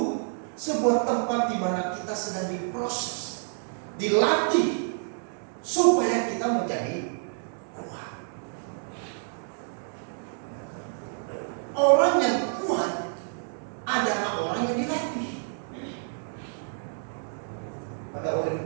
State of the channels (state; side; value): silent; left; digital silence